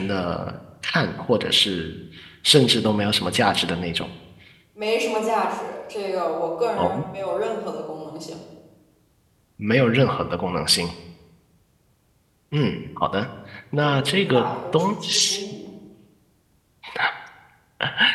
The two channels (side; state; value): both; identical; correlation 1.00